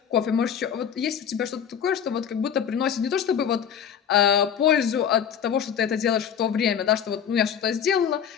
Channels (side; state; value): right; quieter; 8.4 dB